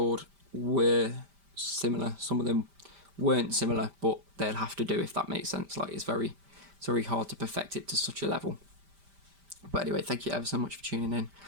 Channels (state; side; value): late; left; 5.1 ms